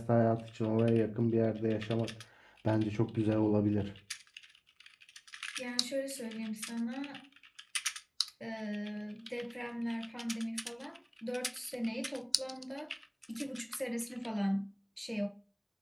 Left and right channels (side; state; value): both; identical; correlation 1.00